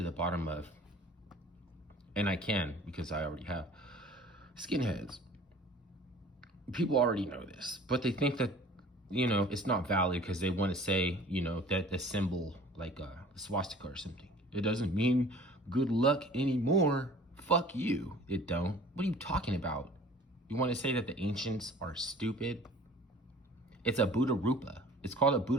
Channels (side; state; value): both; normal; correlation 0.47